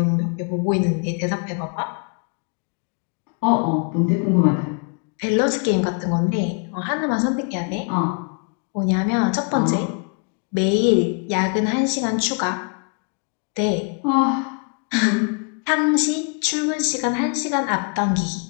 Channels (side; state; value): right; quieter; 37.6 dB